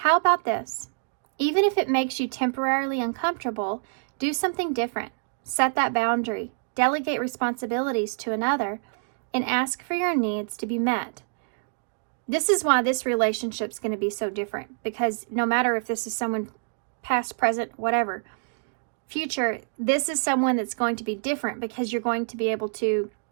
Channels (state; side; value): silent; left; digital silence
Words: about this? Even if it makes you temporarily uncomfortable, do something different. Set that boundary, delegate responsibilities to another, and ask for your needs to be met. This is why this relationship is going to be so different, because no matter if this is someone past, present, whatever, future, this is someone that's going to be different because you're going to be able to